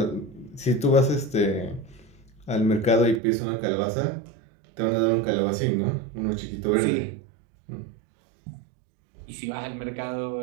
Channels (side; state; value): left; drops out; at 3.2 s